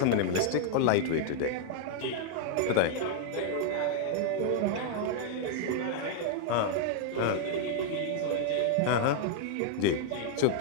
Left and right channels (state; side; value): different; both; correlation -0.01